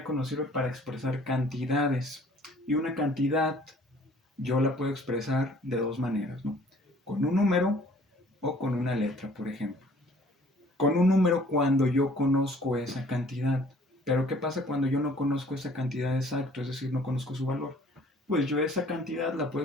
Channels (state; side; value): normal; both; correlation 0.55